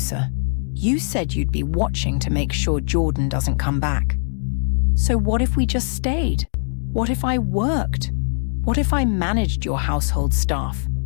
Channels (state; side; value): silent; right; 65 dB below the other